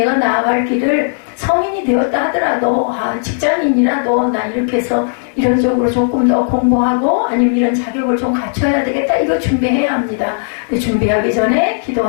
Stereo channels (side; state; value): right; silent; digital silence